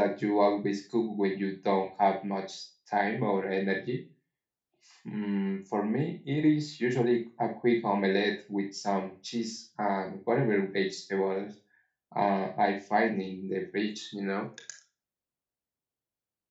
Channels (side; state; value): both; identical; correlation 1.00